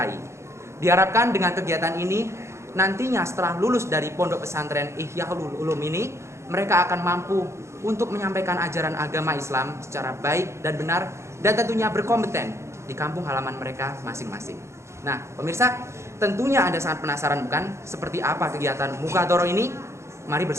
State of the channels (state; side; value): late; left; 0.13 ms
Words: Diharapkan dengan kegiatan ini, nantinya setelah lulus dari pondok pesantren Ihyaul Ulum ini, mereka akan mampu untuk menyampaikan ajaran agama Islam secara baik dan benar, dan tentunya berkompeten di kampung halaman mereka masing-masing. Nah, pemirsa, tentunya Anda sangat penasaran bukan seperti apa kegiatan Mukadoroh ini? Mari